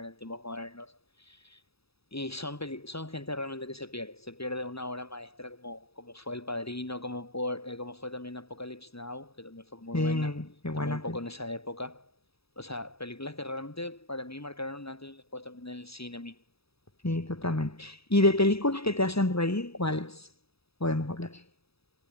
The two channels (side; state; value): right; late; 0.77 ms